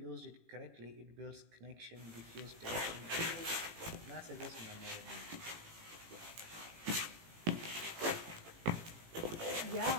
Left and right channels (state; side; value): late; left; 18 ms